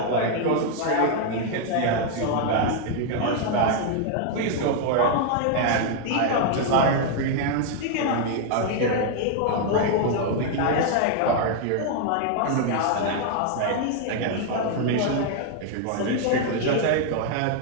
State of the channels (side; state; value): both; different; correlation 0.00